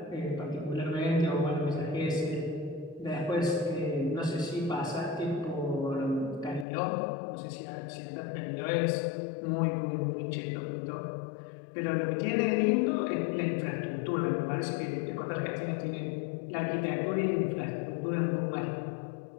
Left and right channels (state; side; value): drops out; right; at 6.7 s